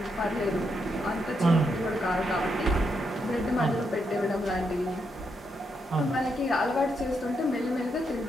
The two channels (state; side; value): normal; both; correlation 0.80